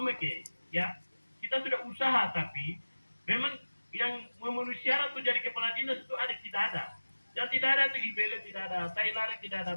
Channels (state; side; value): inverted; both; correlation -1.00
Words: ya. Kita sudah usaha, tapi memang yang memenuhi syarat untuk jadi kepala dinas itu ada tidak ada. Yang tidak ada itu Ibele tidak ada, Tailare tidak ada,